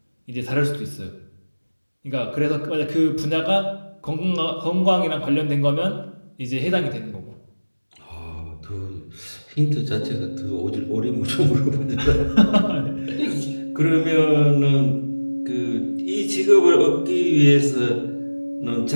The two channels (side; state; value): both; inverted; correlation -1.00